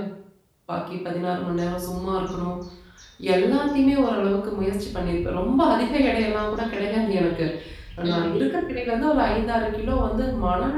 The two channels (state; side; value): identical; both; correlation 1.00